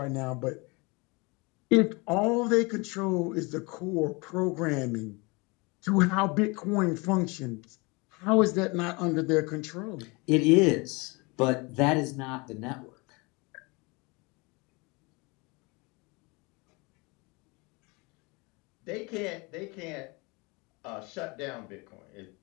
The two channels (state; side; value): quieter; right; 27.5 dB